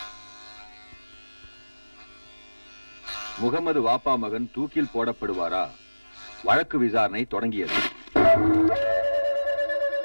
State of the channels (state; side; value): inverted; both; correlation -1.00